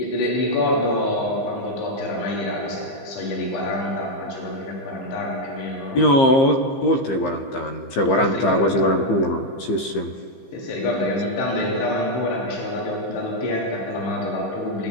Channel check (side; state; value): right; late; 15 ms